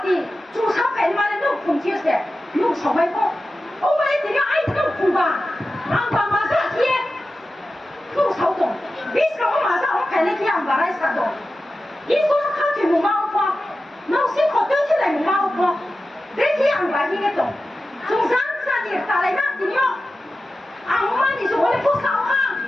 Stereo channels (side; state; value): both; normal; correlation 0.93